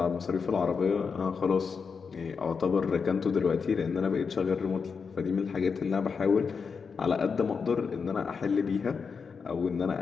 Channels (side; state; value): right; quieter; 5.6 dB